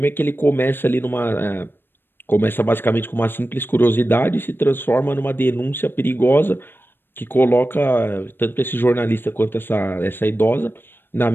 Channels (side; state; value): right; late; 0.099 ms